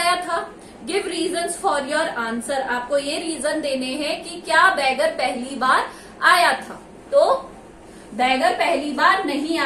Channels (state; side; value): identical; both; correlation 1.00